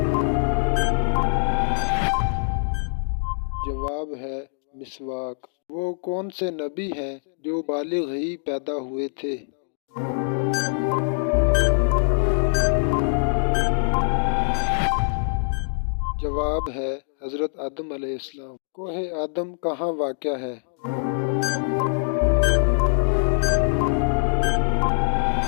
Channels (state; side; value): silent; right; digital silence